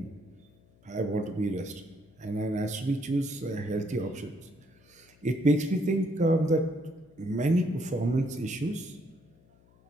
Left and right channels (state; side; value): noise; left; hum, 29 dB below the sound